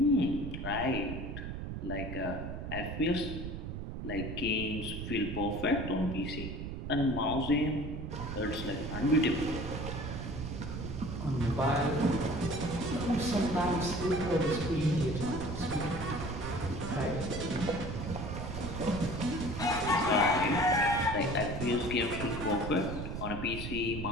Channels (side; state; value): right; noise; rumble, 6 dB below the sound